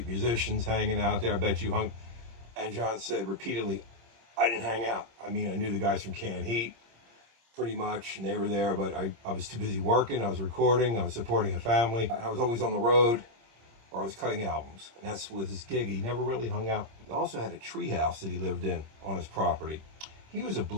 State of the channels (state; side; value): late; left; 26 ms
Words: musicians hanging out there? I bet you hung. And John said repeatedly, I didn't hang out. I mean, I knew the guys from Canned Heat pretty much, and they were there, but I was too busy working. I was recording. I was supporting a family. I was always on the road, or I was cutting albums. And that's with his gig. He never really hung out. He also had a tree house that he lived in on his property. He was a